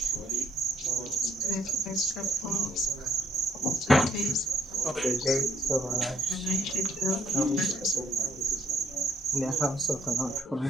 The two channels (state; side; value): normal; both; correlation 0.70